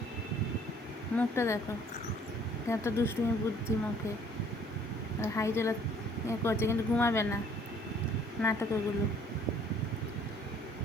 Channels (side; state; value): both; normal; correlation 0.58